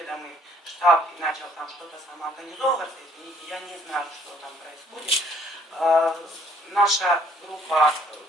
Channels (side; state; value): both; normal; correlation 0.61